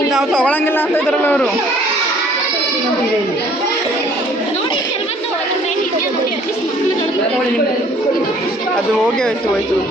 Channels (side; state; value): both; normal; correlation 0.58